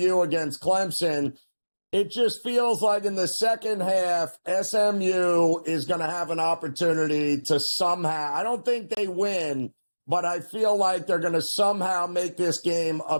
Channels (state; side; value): inverted; both; correlation -1.00